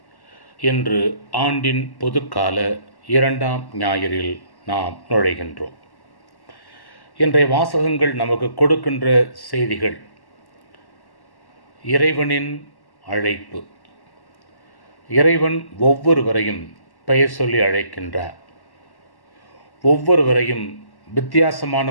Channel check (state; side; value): late; right; 1.1 ms